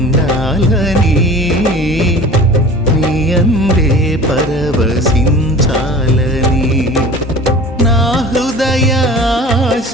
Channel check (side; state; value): both; normal; correlation 0.41